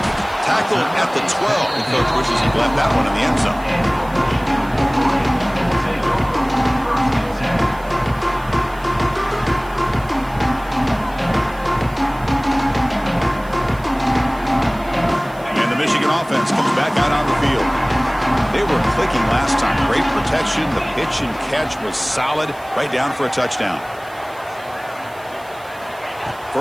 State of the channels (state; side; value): noise; right; hiss, 24 dB below the sound